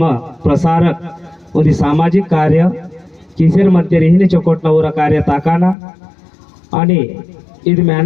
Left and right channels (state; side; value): drops out; right; at 5.8 s